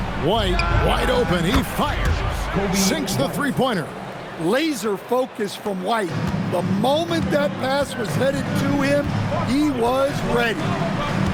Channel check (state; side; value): identical; both; correlation 1.00